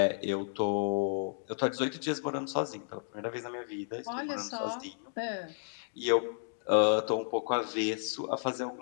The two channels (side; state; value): right; silent; digital silence